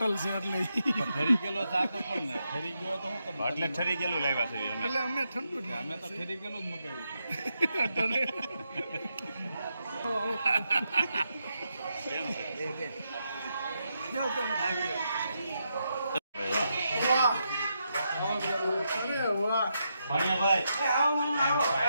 છે એટલે ફરી ગયેલો ચા તો પણ ને ફરી ગયો તો હું કરું? એટલે ઠરી ગયેલું લાવ્યા છે અમે. એટલે અમે ઠંડુ જ અમે તો ફરી ગયેલું જ મગાવ્યું કેમ છે? વાહ. અરે વાહ. ભાણિયાભાઈ,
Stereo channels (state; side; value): inverted; both; correlation -0.83